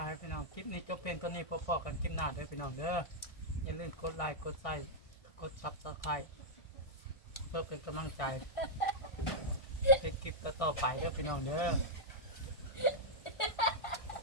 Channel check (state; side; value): late; right; 1.5 ms